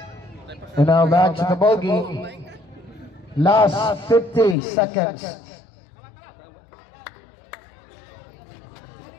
And now back to the ball game. Last 50 seconds.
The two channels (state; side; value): drops out; right; at 4.5 s